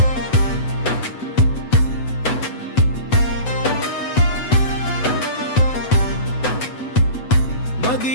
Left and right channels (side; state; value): right; late; 8.0 ms